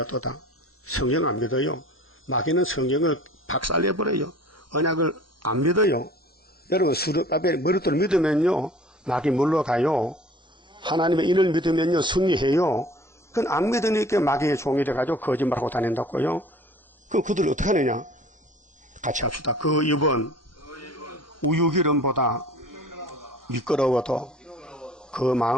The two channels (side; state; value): both; normal; correlation 0.47